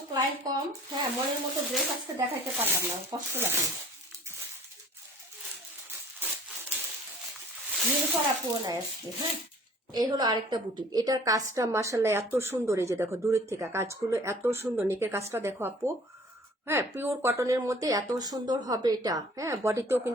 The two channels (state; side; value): normal; both; correlation 0.51